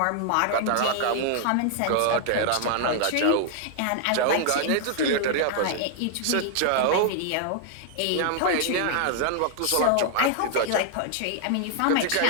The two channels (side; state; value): both; different; correlation 0.00